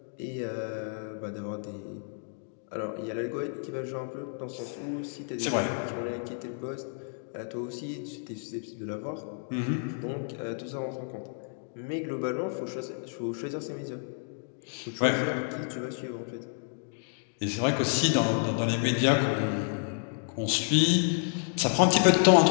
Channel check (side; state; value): right; silent; 58 dB below the other